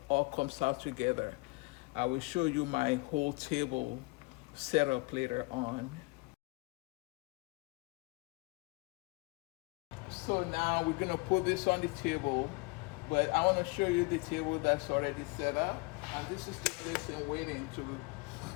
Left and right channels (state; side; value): quieter; right; 26.4 dB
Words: all comes out together. I will show you my whole table setup later on. So now we're gonna put this on the table, but I want to show you the table that's already set up, and this is the lesson waiting